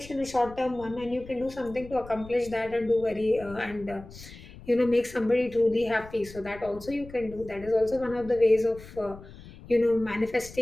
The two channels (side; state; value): left; noise; rumble, 17 dB below the sound